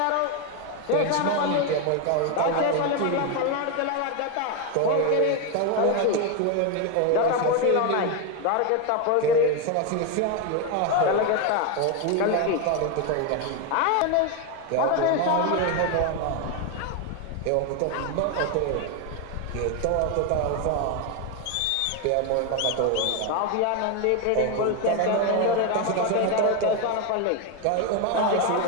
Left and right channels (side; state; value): both; different; correlation 0.02